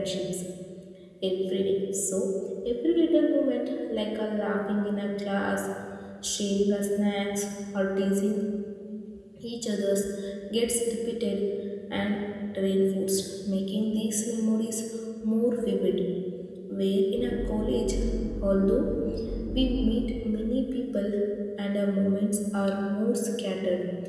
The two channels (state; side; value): identical; both; correlation 1.00